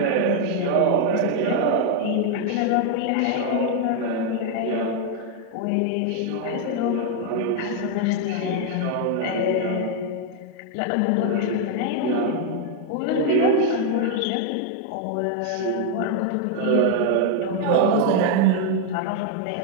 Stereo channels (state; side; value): different; both; correlation 0.00